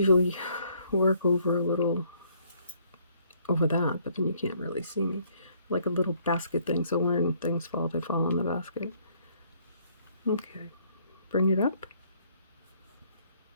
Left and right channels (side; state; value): both; inverted; correlation -0.65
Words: work over a little over that, but then you can't really see me. Like a little basket thing, so when things fall, they fall in the basket. Okay, bring it up.